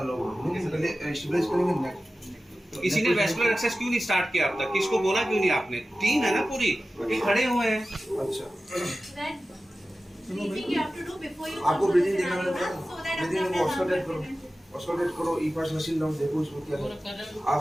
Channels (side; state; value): both; normal; correlation 0.95